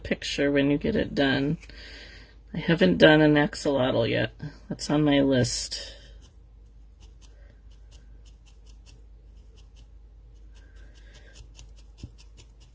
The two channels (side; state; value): both; identical; correlation 1.00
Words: when you get it done. I haven't done an axolotl yet. That's on my list.